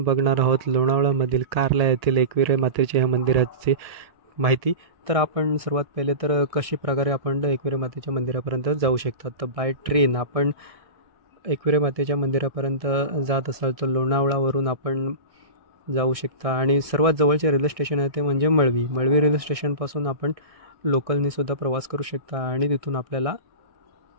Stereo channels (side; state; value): left; late; 1.6 ms